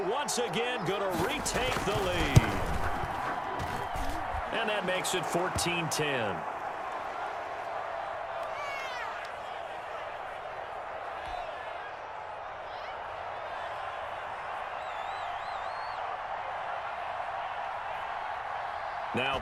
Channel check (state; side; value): identical; both; correlation 1.00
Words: once again going to retake the lead. And that makes it 14-10. Now